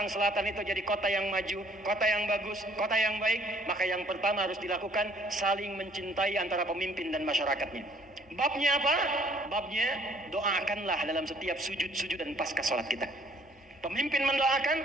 Selatan itu jadi kota yang maju, kota yang bagus, kota yang baik, maka yang pertama harus dilakukan saling mencintai antara pemimpin dan masyarakatnya. Babnya apa? Babnya doakanlah dalam setiap sujud-sujud dan pasca sholat kita. Pemimpin mendoakan,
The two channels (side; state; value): both; normal; correlation 0.60